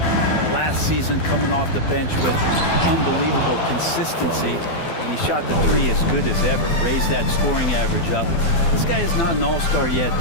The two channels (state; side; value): late; right; 12 ms